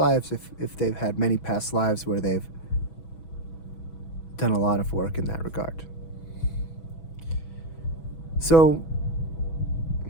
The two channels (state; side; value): late; right; 6.1 ms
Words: if they've had many past lives where they've done a lot of work in that regard. So